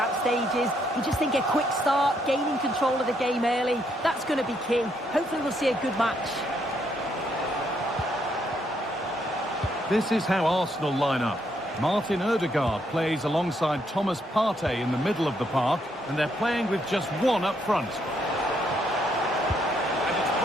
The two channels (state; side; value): normal; both; correlation 0.74